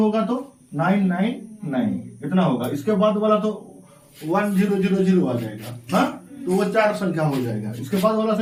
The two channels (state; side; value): identical; both; correlation 1.00